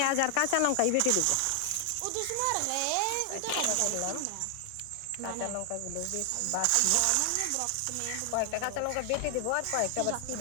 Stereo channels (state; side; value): different; both; correlation 0.00